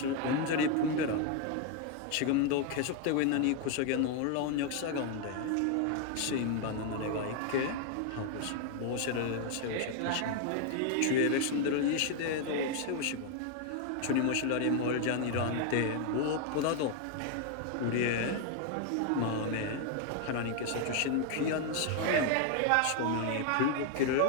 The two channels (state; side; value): different; both; correlation 0.01